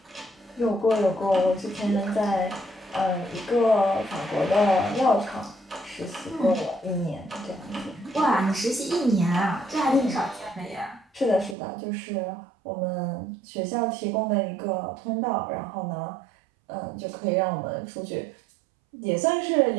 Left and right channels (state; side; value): drops out; left; at 11.6 s